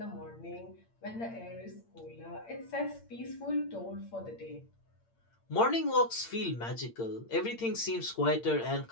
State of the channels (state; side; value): late; right; 8.7 ms